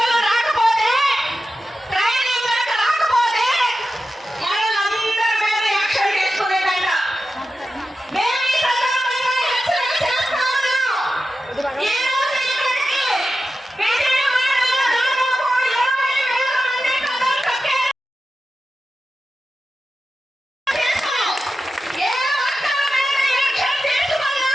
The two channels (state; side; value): normal; both; correlation 0.92